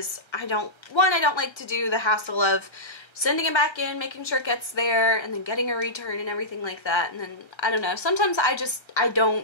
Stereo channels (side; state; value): right; late; 1.3 ms